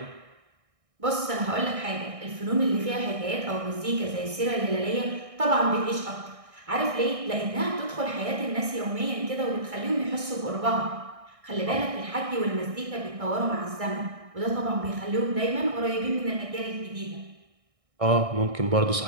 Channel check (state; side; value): late; left; 1.6 ms